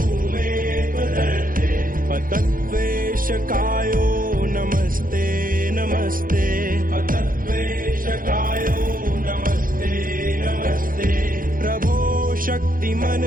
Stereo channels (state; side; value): late; left; 0.40 ms